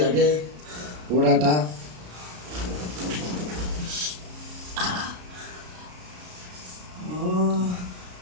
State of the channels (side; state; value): left; late; 33 ms